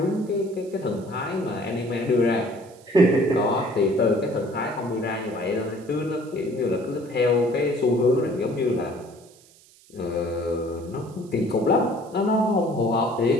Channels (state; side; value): noise; right; hiss, 27 dB below the sound